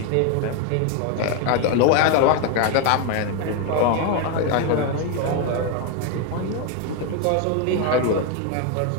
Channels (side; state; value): both; different; correlation 0.01